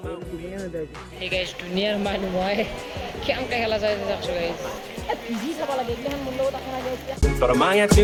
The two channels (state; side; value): identical; both; correlation 1.00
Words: গোল দিনে না দাই এই গাইস দুনিয়ার মানুহ মই কেমকে খেলা চাই যাকছো গাইস পিজি চাবা লাগে এখান মন লগত আখনা গাইস তোর মায়া